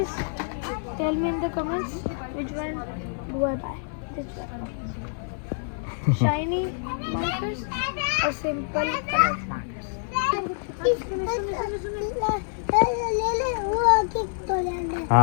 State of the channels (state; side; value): silent; right; digital silence